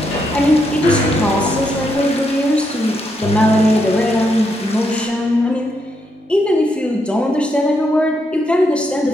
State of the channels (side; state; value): both; normal; correlation 0.79